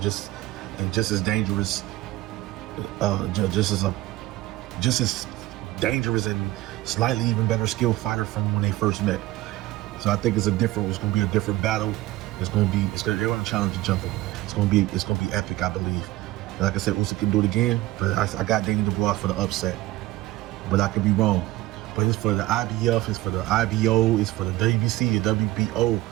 as dangerous, just as dangerous and slightly even better skilled fighter from when they first met. So I think it's going to be a different battle. They're going to challenge each other. It's going to be epic, I believe. And like I said, Usyk can do it again, but I got Daniel Dubois for the upset. But I could be wrong. But it's for the IBF, it's for the IBO, it's for the WBC, the WBO.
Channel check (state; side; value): quieter; left; 17.4 dB